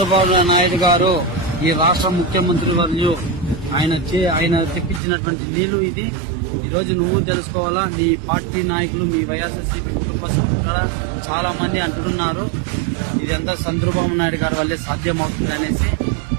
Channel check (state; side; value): drops out; left; at 5.0 s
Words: నాయుడు గారు, ఈ రాష్ట్ర ముఖ్యమంత్రి వర్యులు. ఆయన తెప్పించినటువంటి నీళ్లు ఇది. ఈ రోజు నువ్వు తెలుసుకోవాలా. మీ పార్టీ నాయకులు, మీ వైఎస్ఆర్సీపీ కుటుంబ సభ్యులు చాలా మంది అంటున్నారు ఇదంతా చంద్రబాబు నాయుడు గారి వల్లే సాధ్యమవుతుంది అనేసి.